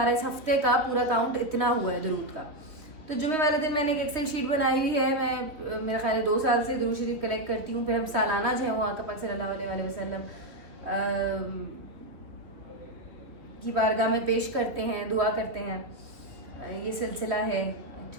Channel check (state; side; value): late; left; 2.9 ms